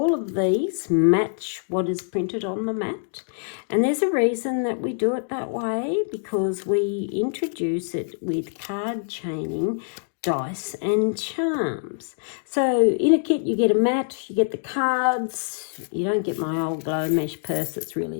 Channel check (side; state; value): right; silent; digital silence